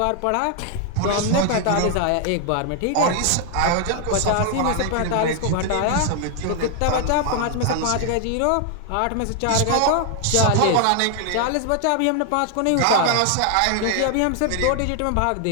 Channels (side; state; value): both; different; correlation 0.00